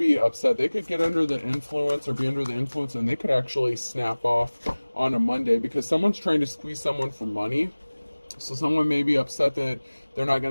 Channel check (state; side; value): inverted; both; correlation -1.00